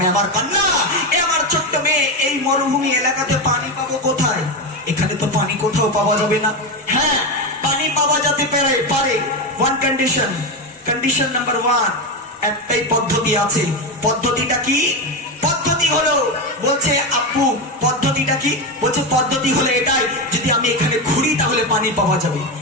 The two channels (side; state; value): both; normal; correlation 0.14